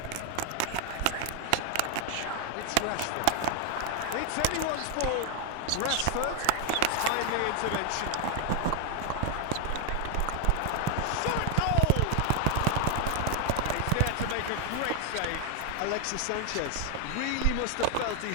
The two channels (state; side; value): different; both; correlation 0.00